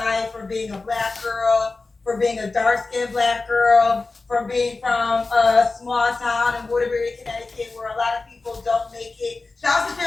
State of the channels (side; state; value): right; quieter; 3.7 dB